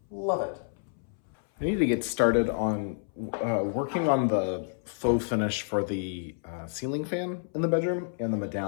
Love it. I need to get started on working on the faux finish for the ceiling fan in the bedroom and the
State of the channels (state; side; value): silent; right; 59 dB below the other